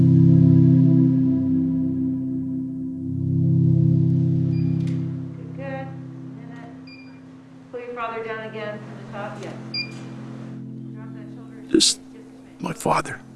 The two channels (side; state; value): both; identical; correlation 1.00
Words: Good. Pull your father down again from the top. Yes. Drop that shoulder. Just my father.